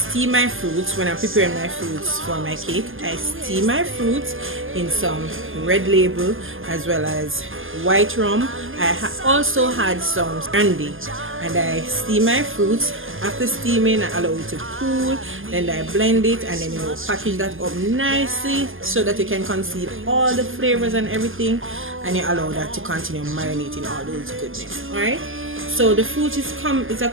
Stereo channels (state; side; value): late; left; 0.59 ms